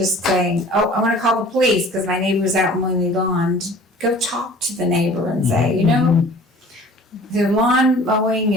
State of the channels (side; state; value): both; normal; correlation 0.47